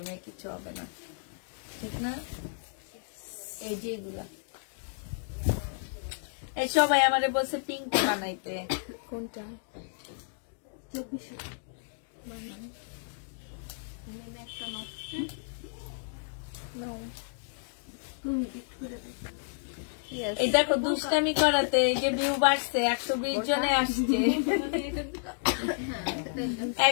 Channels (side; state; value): right; silent; digital silence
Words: কিছু হবে না, ঠিক না? এই যে এগুলা, এই সবাই আমারে বলছে পিঙ্ক বানাইতে। কোনটা? এই দেখো দুষ্টামি করাতে এই যে ভিউ বাড়ছে, 120 জনে আসছে,